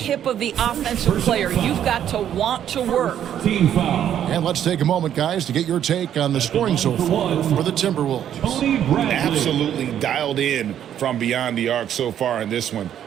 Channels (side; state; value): left; quieter; 10.1 dB